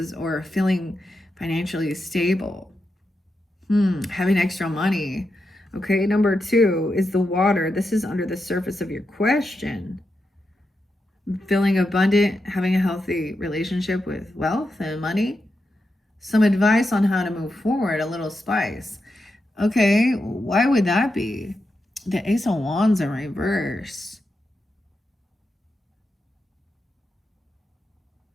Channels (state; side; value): normal; both; correlation 0.87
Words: or feeling financially stable, having extra money. Okay, number 2 is the water. This is under the surface of your question. Feeling abundant, having a healthy relationship with wealth and money. Some advice on how to move forward, a little spice. Okay, why would that be? The Ace of Wands in reverse.